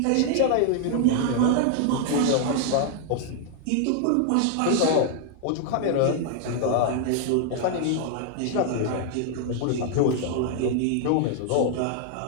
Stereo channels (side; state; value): both; different; correlation 0.00